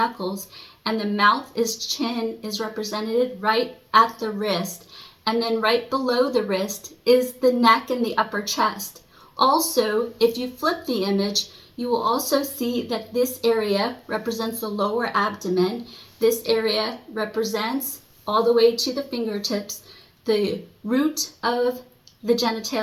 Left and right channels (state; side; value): identical; both; correlation 1.00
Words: and the mouth chin is represented right at the wrist. And then right below the wrist is the neck and the upper chest. Also, if you flip the image, you will also see that this area represents the lower abdomen. This area represents all the way to the fingertips, the root of the